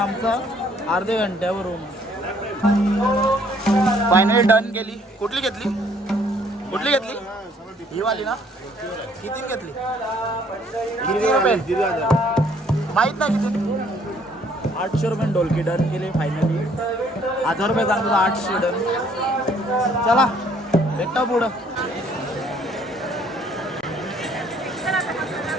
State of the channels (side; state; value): both; normal; correlation 0.62